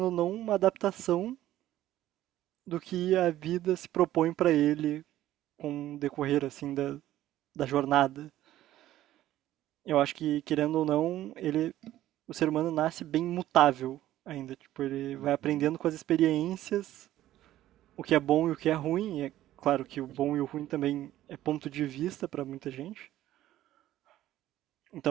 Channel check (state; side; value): quieter; left; 13.8 dB